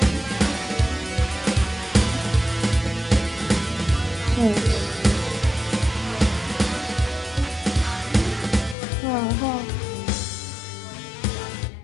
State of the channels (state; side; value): drops out; right; at 8.8 s